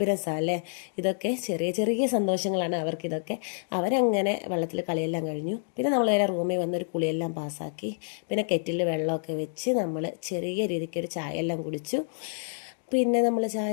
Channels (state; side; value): silent; right; digital silence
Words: അല്ലേ. ഇതൊക്കെ ചെറിയ ചെറിയ സന്തോഷങ്ങളാണ് അവർക്കിതൊക്കെ. അവരങ്ങനെ വെള്ളത്തിൽ കളിയെല്ലാം കഴിഞ്ഞു. പിന്നെ നമ്മൾ നേരെ റൂമിൽ വന്നൊരു കുളിയെല്ലാം പാസ്സാക്കി. പിന്നെ കെറ്റിൽ വെള്ളമൊക്കെ വെച്ച് നമ്മൾ ചെറിയ രീതിക്കൊരു ചായ എല്ലാം കുടിച്ചു. പിന്നെ നമ്മൾ ചായ